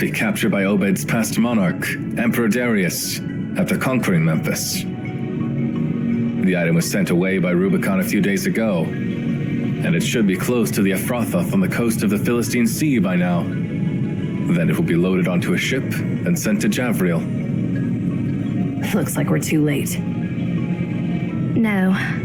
captured by Obed's past monarch, Emperor Darius, after conquering Memphis. The item was sent away by Rubicon a few days ago, and it should be close to the Ephrathoth on the coast of the Philistine Sea by now. Then it will be loaded onto a ship and sent to Javriel. Looks like we're too late. No,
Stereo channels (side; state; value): both; identical; correlation 1.00